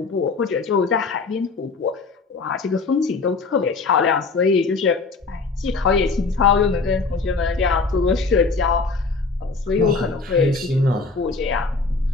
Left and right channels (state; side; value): quieter; right; 4.1 dB